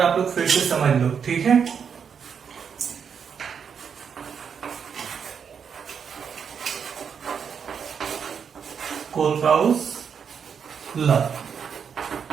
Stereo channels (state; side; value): quieter; left; 7.0 dB